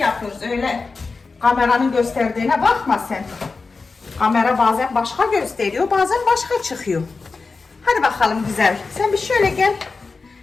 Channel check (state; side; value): quieter; right; 4.2 dB